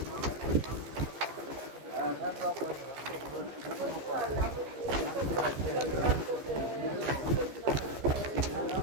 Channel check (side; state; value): left; late; 15 ms